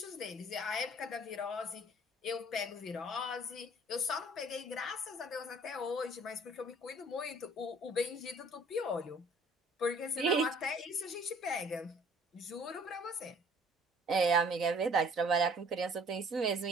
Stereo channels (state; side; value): normal; both; correlation 0.55